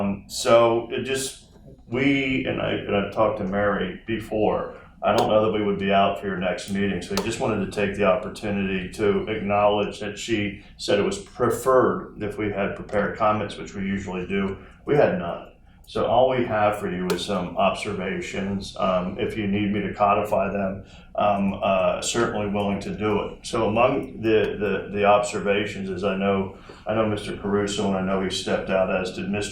So it just, I've talked to Mary before, I don't know that we would be out for your next meeting, so I just wanted to take the opportunity to acknowledge that she said it was preferred if we had prepared comments, which we usually do. We had none. So all we have for you is some observations. If you need me to codify them, I'm certainly willing to do it. So among the observations is I know Mr. Caruso, and I know he stepped out, as did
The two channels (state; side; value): identical; both; correlation 1.00